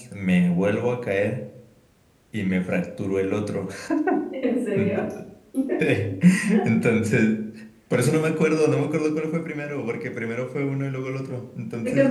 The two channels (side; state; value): both; identical; correlation 1.00